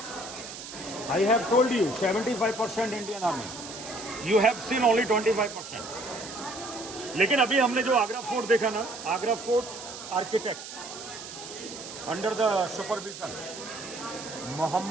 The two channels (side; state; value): right; noise; hiss, 11 dB below the sound